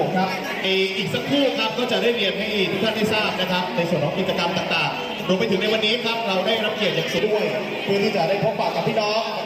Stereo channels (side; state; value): both; identical; correlation 1.00